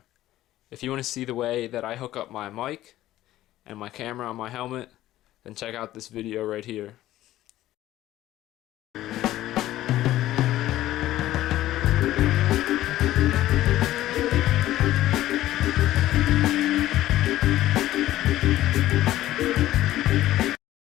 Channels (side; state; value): right; quieter; 14.5 dB